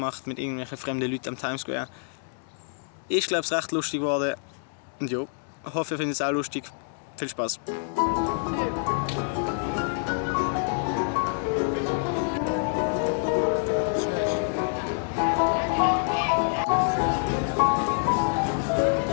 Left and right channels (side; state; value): right; silent; digital silence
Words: mit irgendwelchen fremden Leuten am Times Square. Ist, glaube ich, recht lustig geworden. Und ja, ich hoffe, ihr findet es auch lustig. Viel Spaß!